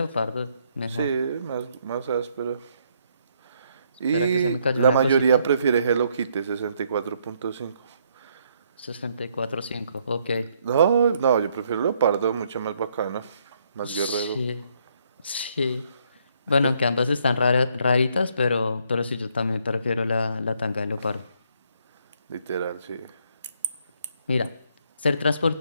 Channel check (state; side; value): inverted; both; correlation -0.71